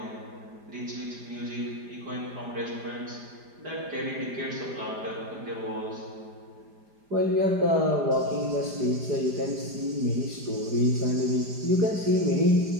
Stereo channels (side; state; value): left; late; 5.0 ms